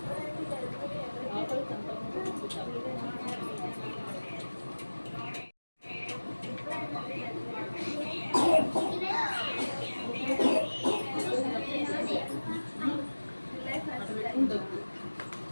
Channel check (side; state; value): both; inverted; correlation -1.00